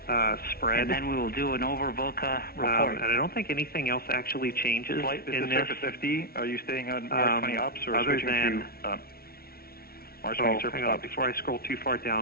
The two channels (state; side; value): late; right; 0.44 ms